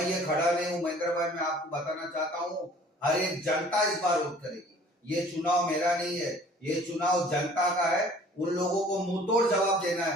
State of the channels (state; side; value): normal; both; correlation 0.52